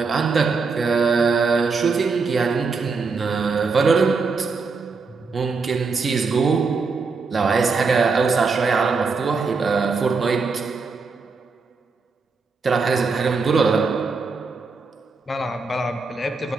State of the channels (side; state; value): left; quieter; 4.5 dB